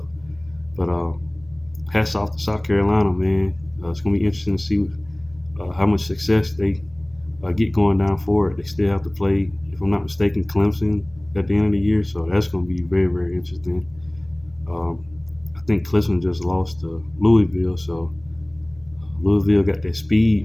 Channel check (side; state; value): right; noise; hum, 25 dB below the sound